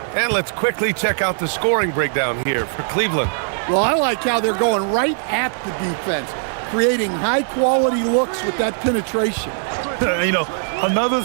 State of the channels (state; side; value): silent; left; digital silence